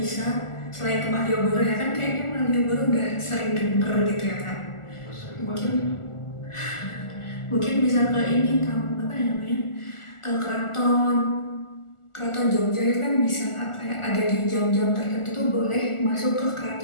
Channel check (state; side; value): late; right; 1.4 ms